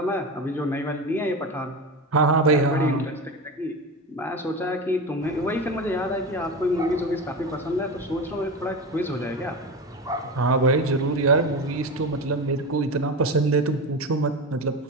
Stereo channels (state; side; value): normal; both; correlation 0.23